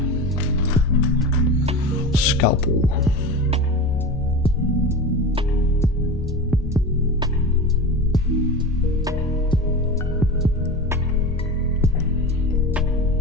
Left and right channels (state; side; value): normal; both; correlation 0.28